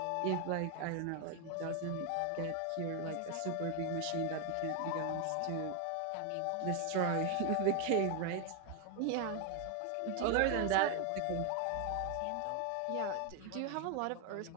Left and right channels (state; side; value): different; both; correlation 0.01